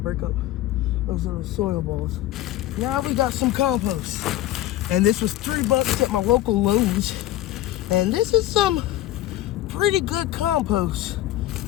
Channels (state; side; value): quieter; right; 14.3 dB